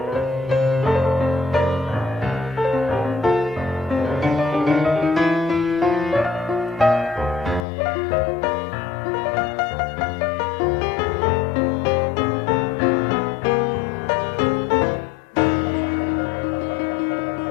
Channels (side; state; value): right; drops out; at 7.7 s